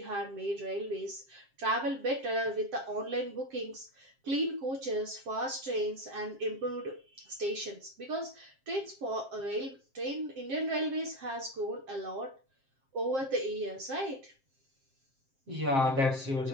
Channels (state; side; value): late; left; 7.5 ms